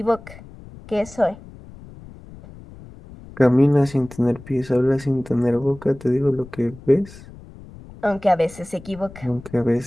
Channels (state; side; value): noise; left; rumble, 19 dB below the sound